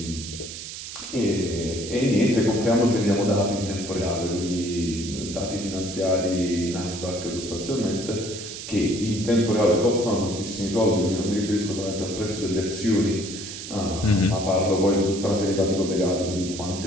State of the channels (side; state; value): right; noise; hiss, 10 dB below the sound